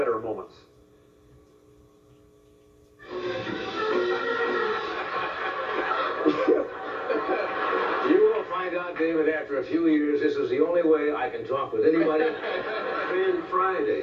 moments. You will find out, David, after a few years, this is the only way I can talk with anybody. Ran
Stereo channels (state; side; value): identical; both; correlation 1.00